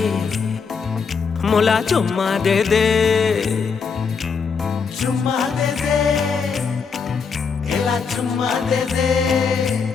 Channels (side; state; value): right; quieter; 5.7 dB